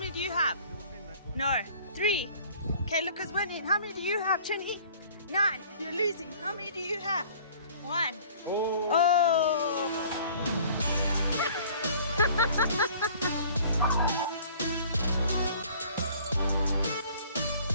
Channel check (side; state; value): both; inverted; correlation -0.50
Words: do you have? No. 3. Okay, look who's winning. How many do you have, Trini? 9. You're losing. How many do you have? 1. Oh.